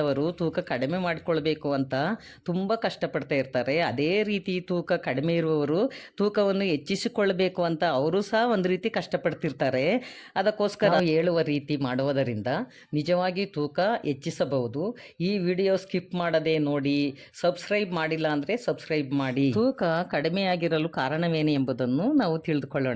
ತೂಕ ಕಡಿಮೆ ಮಾಡಿಕೊಳ್ಬೇಕು ಅಂತ ತುಂಬ ಕಷ್ಟಪಡ್ತಾ ಇರ್ತಾರೆ. ಅದೇ ರೀತಿ ತೂಕ ಕಡಿಮೆ ಇರುವವರು ತೂಕವನ್ನು ಹೆಚ್ಚಿಸಿಕೊಳ್ಳಬೇಕು ಅಂತ ಅವರು ಸಹ ಒಂದು ರೀತಿ ಕಷ್ಟಪಡ್ತಿರ್ತಾರೆ. ಅದಕ್ಕೋಸ್ಕರ ನಾವು ಹೇಳುವ ರೀತಿ ಮಾಡುವುದರಿಂದ ನಿಜವಾಗಿ ತೂಕ ಹೆಚ್ಚಿಸಬಹುದು. ಈ ವಿಡಿಯೋ ಸ್ಕಿಪ್ ಮಾಡದೆ ನೋಡಿ. ಸಬ್ಸ್ಕ್ರೈಬ್ ಮಾಡಿಲ್ಲ ಅಂದರೆ ಸಬ್ಸ್ಕ್ರೈಬ್ ಮಾಡಿ. ತೂಕ ಕಡಿಮೆಯಾಗಿರಲು ಕಾರಣವೇನು ಎಂಬುದನ್ನು ನಾವು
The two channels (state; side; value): identical; both; correlation 1.00